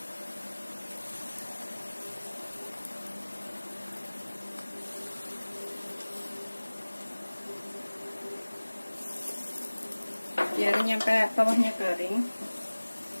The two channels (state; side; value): inverted; both; correlation -1.00